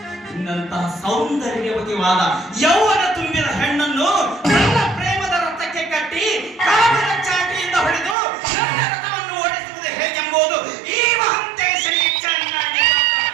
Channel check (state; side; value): drops out; left; at 8.2 s